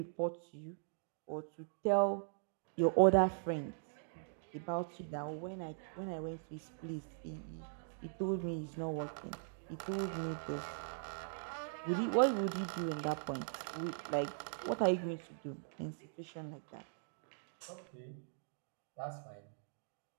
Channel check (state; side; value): silent; left; digital silence